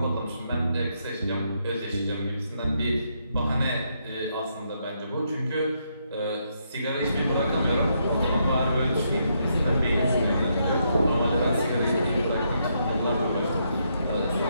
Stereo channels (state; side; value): inverted; both; correlation -0.77